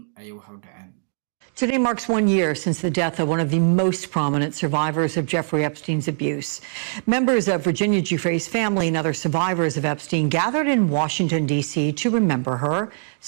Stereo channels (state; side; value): silent; left; digital silence